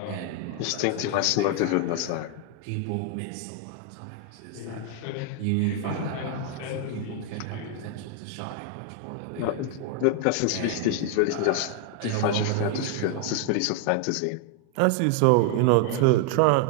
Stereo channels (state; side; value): different; both; correlation 0.00